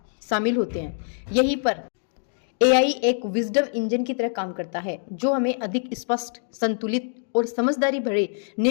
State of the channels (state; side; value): silent; right; digital silence